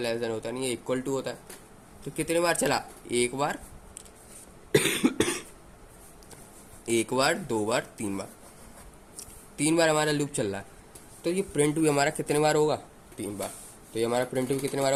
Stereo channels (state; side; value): identical; both; correlation 1.00